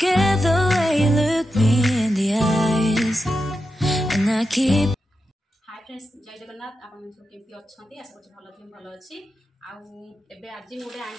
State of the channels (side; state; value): both; normal; correlation 0.89